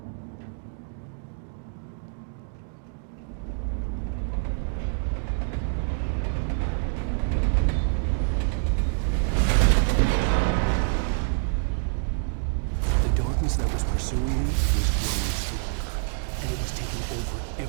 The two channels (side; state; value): left; silent; 61 dB below the other